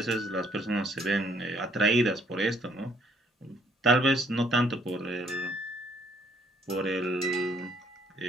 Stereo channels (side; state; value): both; normal; correlation 0.65